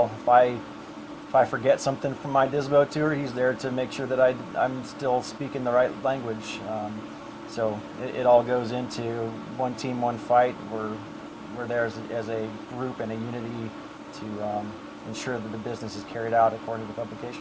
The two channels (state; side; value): identical; both; correlation 1.00